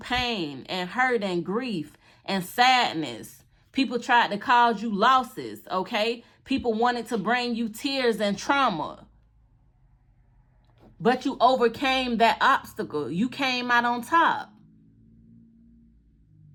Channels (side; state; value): both; identical; correlation 1.00